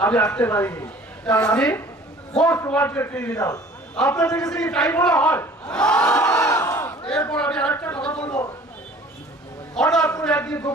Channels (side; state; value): both; normal; correlation 0.49